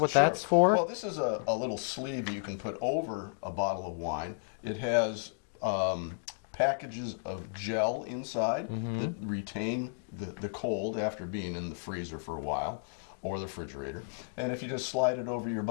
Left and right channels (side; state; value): right; silent; digital silence